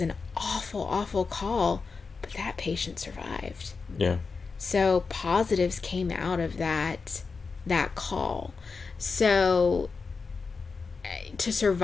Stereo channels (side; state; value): right; quieter; 4.7 dB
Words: an awful call, but that patient survived. Yeah. So positives came out of that call. So to